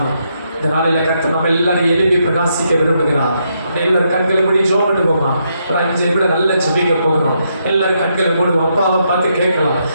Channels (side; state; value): both; inverted; correlation -0.78